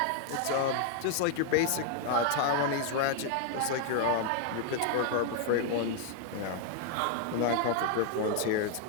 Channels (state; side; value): different; both; correlation 0.00